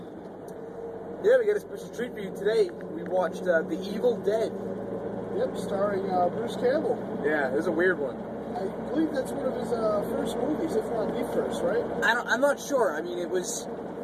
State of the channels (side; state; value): both; identical; correlation 1.00